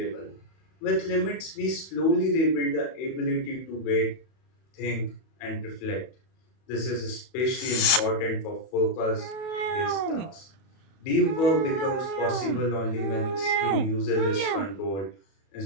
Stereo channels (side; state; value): right; late; 31 ms